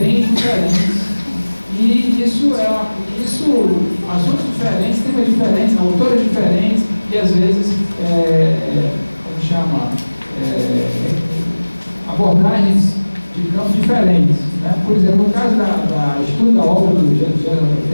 diferentes. E assuntos diferentes, temas diferentes, autores diferentes, e às vezes, abordagens de campos diferentes. Né? Por exemplo, no caso da estudo da obra do Geraldo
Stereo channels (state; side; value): inverted; both; correlation -1.00